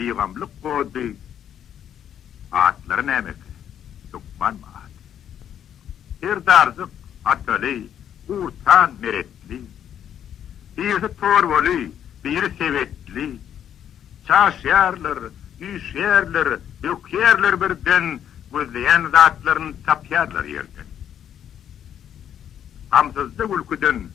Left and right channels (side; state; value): right; quieter; 9.6 dB